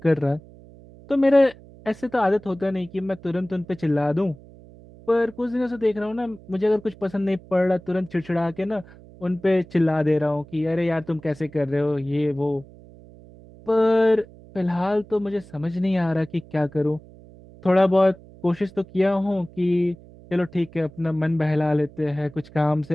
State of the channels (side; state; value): right; noise; hum, 22 dB below the sound